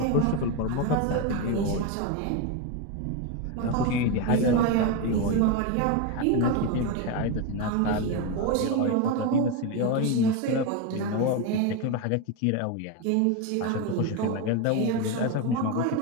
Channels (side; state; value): both; different; correlation 0.03